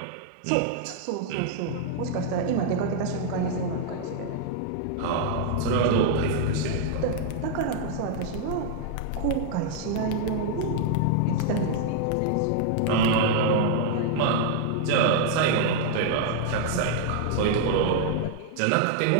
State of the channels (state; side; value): different; both; correlation -0.01